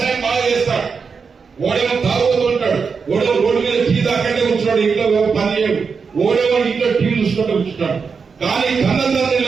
బాగా చేస్తాడు, ఓడేమో తాగుతూ ఉంటాడు, ఓడేమో రోడ్డు మీద టీ దాకంటే కూర్చున్నాడు, ఇంట్లో పని చేయడు, ఓడేమో ఇంట్లో టీవీ చూసుకుంటూ కూర్చుంటాడు. కానీ కన్నతండ్రి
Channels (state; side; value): quieter; left; 5.4 dB